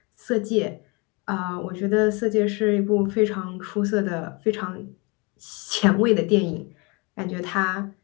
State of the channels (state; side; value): quieter; right; 29.1 dB